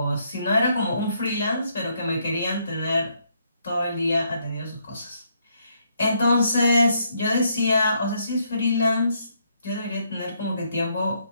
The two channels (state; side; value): inverted; both; correlation -0.73